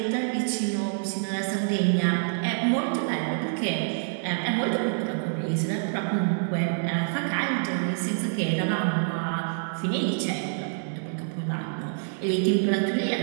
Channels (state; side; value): silent; left; digital silence